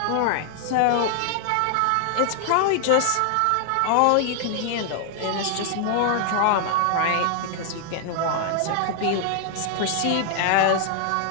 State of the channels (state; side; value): different; both; correlation 0.00